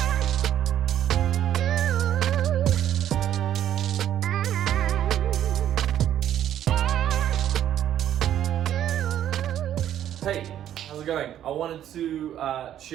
how's it going? I wanted to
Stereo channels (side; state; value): left; quieter; 11.0 dB